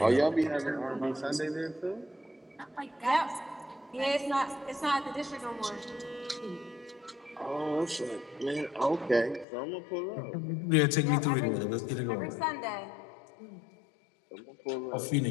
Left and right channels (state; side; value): drops out; right; at 9.5 s